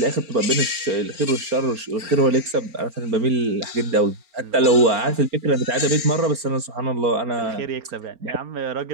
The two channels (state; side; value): late; left; 4.4 ms